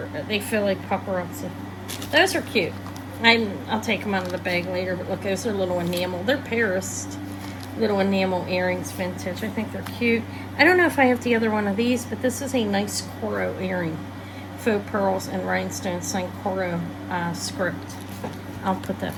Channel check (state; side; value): identical; both; correlation 1.00